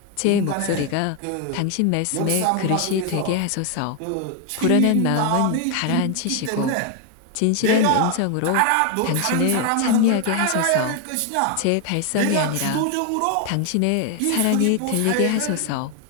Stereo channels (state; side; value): different; both; correlation 0.00